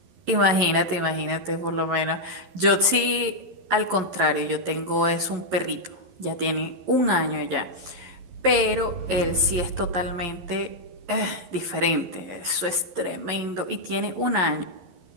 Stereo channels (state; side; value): late; left; 12 ms